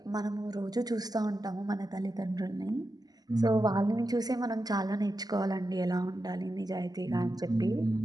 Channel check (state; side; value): late; left; 0.19 ms